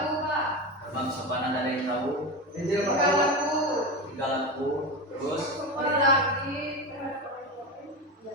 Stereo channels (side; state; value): both; normal; correlation 0.20